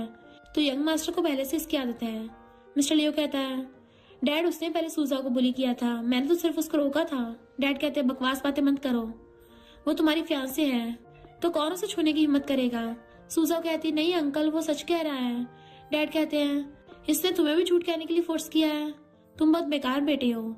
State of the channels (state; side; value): identical; both; correlation 1.00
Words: तो यंग मास्टर को पहले से इसकी आदत है। मिस्टर लियो कहता है, डैड उसने पहले सूजा को बुली किया था, मैंने तो सिर्फ उसको रोका था। डैड कहते हैं, बकवास बातें मत करो, वो तुम्हारी फियांसे है तो कौन उसे छूने की हिम्मत करेगा? सूजा कहती, नहीं अंकल, वो सच कह रहा है। डैड कहते हैं, इसने तुम्हें भी झूठ कहने के लिए फोर्स किया है, तुम बहुत बेकार बेटे हो,